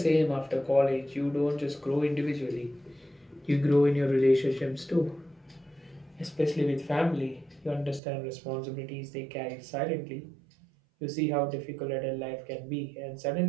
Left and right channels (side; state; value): left; drops out; at 8.0 s